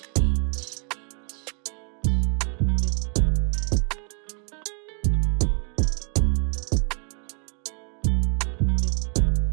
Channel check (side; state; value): left; quieter; 39.3 dB